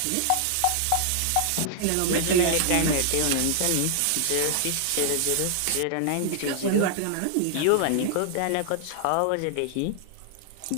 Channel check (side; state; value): both; different; correlation -0.01